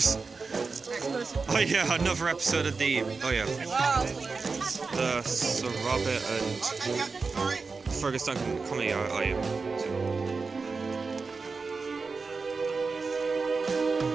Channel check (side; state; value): left; quieter; 4.4 dB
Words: Oh yeah, another episode of the. Oh yeah. The Sir Robert and Fergus Duncan comedy. I am.